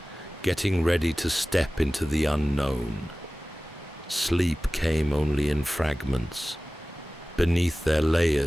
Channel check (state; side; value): normal; both; correlation 0.97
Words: getting ready to step into the unknown. Sleep came only in fragments. Beneath their